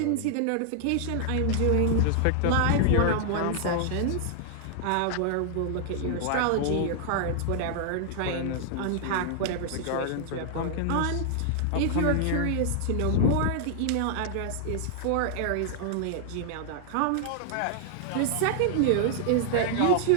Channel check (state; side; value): different; both; correlation -0.01